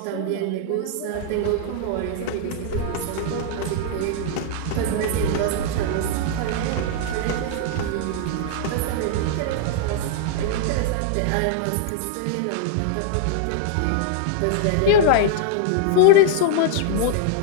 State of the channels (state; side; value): different; both; correlation -0.01